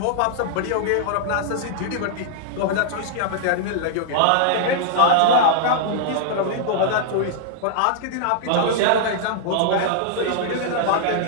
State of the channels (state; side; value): different; both; correlation -0.01